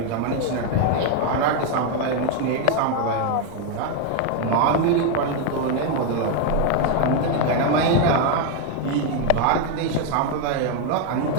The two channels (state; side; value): different; both; correlation 0.01